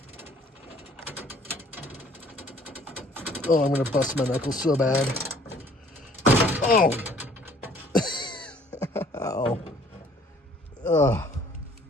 Oh, I'm gonna bust my knuckles so bad. Oh! Ow. Ugh.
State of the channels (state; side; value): normal; both; correlation 0.57